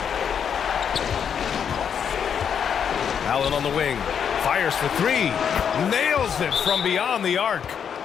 Allen on the wing. Fires for 3. Nails it from beyond the arc.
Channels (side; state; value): right; quieter; 7.7 dB